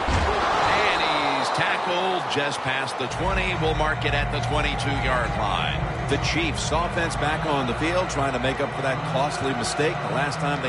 And he's tackled just past the 20. We'll mark it at the 22-yard line. The Chiefs offense back on the field trying to make up for that costly mistake. The last time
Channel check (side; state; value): both; identical; correlation 1.00